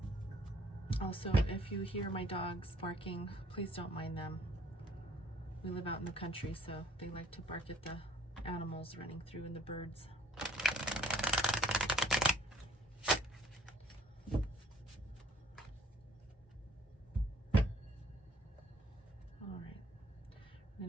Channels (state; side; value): normal; both; correlation 0.59